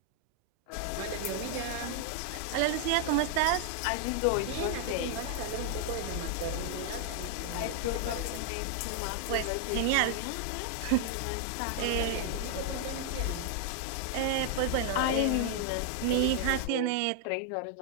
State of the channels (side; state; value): both; different; correlation 0.00